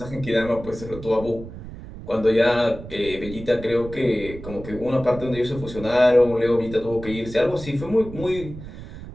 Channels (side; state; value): right; noise; rumble, 13 dB below the sound